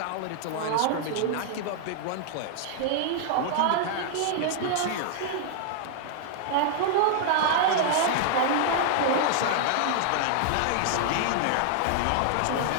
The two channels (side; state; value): both; different; correlation -0.01